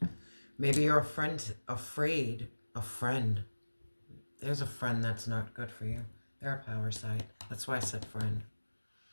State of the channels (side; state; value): both; inverted; correlation -1.00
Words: Maybe you're afraid. There's a friend that's not good for you. They're a power side. That's why I said friend.